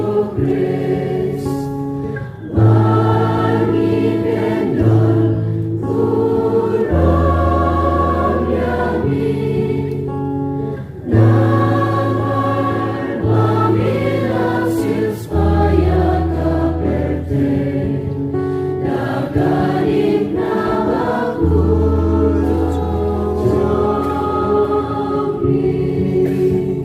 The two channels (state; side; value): identical; both; correlation 1.00